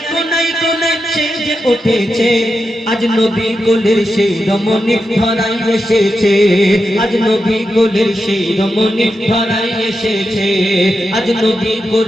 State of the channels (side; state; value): both; normal; correlation 0.88